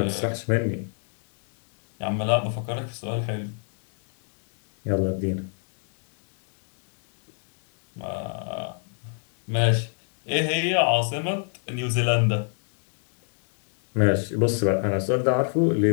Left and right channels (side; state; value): right; silent; 55 dB below the other